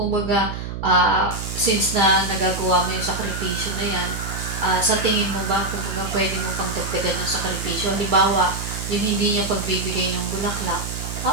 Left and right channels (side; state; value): right; noise; hum, 6 dB below the sound